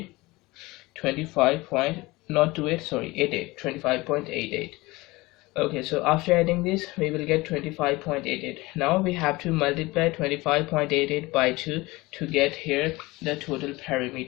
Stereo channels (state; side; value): quieter; right; 21.5 dB